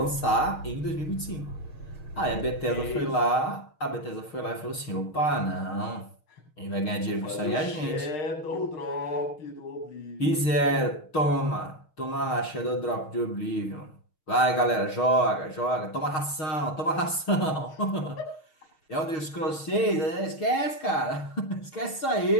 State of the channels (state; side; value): late; right; 6.5 ms